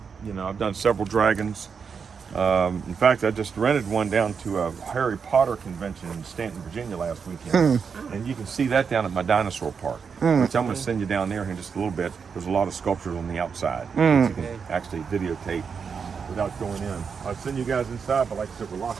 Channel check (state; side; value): quieter; left; 6.1 dB